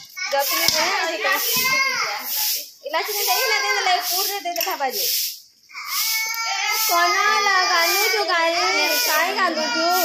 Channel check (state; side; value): identical; both; correlation 1.00